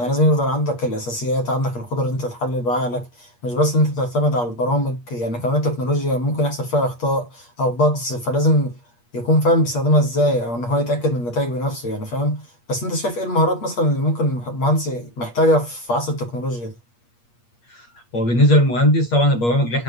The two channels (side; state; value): right; late; 8.5 ms